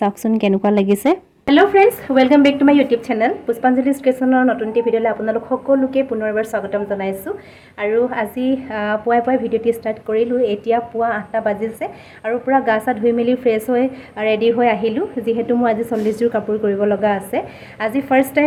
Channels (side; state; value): both; identical; correlation 1.00